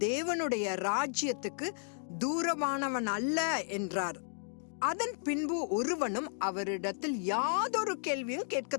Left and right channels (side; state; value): right; silent; digital silence